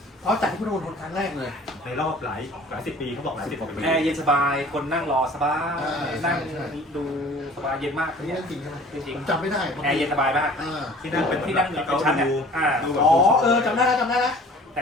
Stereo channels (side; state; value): both; normal; correlation 0.48